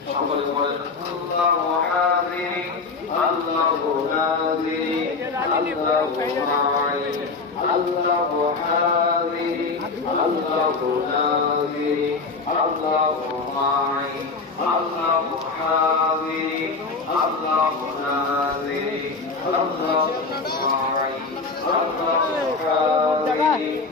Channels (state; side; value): quieter; right; 4.2 dB